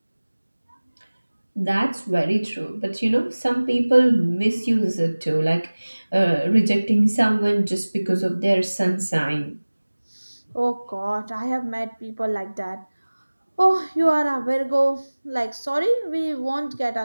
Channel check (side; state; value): both; inverted; correlation -1.00